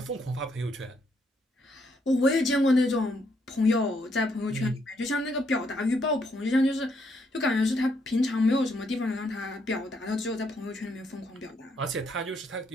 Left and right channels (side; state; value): both; normal; correlation 0.74